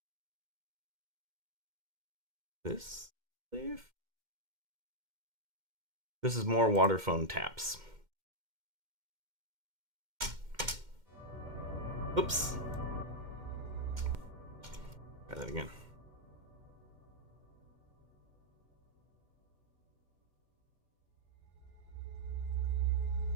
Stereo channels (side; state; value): left; late; 2.1 ms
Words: this, I believe. This is more water phone taps. Oops. Try that again.